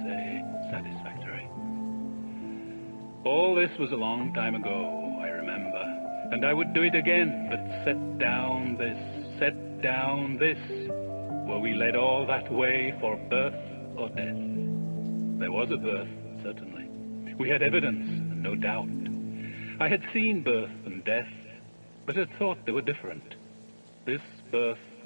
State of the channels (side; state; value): both; inverted; correlation -1.00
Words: say, satisfactory. All this was a long time ago, I remember, and I would do it again, but set down this. Were we led all that way for birth or death? There was a birth, certainly. We had evidence, and no doubt. I had seen birth and death, but had thought they were different. This birth